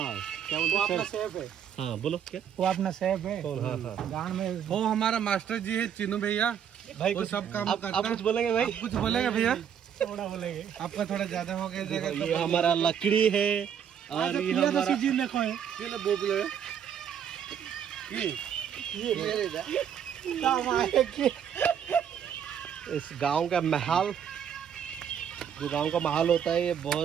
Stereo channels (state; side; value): quieter; left; 8.5 dB